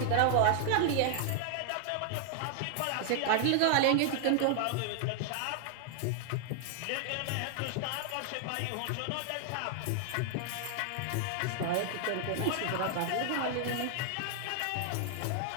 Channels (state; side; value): different; both; correlation 0.00